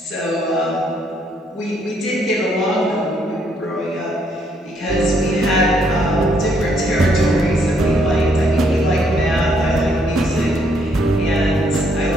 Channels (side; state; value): both; normal; correlation 0.71